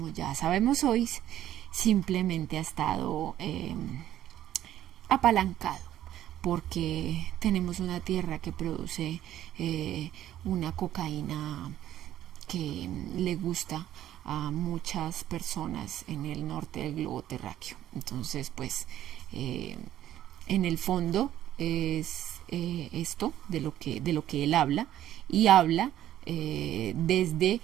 ya sabemos hoy, simplemente ha estado apalancado, porque tenemos una tierra que produce una cocaína que le gusta a muchas personas en el norte del globo terráqueo. Entonces, pues, en el fondo es esto de lo que él habla, y habla desde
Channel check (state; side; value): quieter; left; 12.4 dB